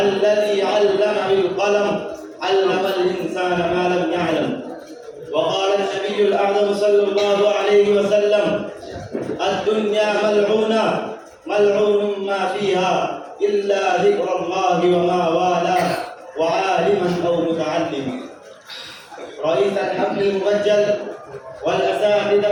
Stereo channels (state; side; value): identical; both; correlation 1.00